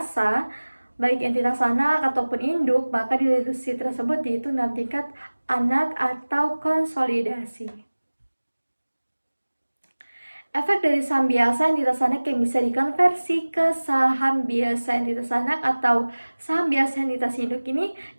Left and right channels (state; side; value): inverted; both; correlation -1.00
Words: baik entitas anak ataupun induk, maka dilusi tersebut yaitu dalam tingkat anak atau konsolidasi. Efek dari saham biasa entitas anak yang bisa dikonversi ke saham biasa entitas anak atau saham biasa entitas induk ini